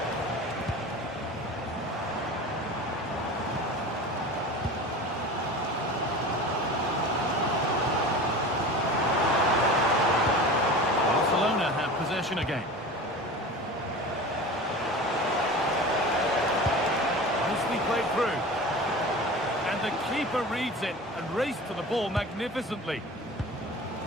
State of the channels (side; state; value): both; normal; correlation 0.34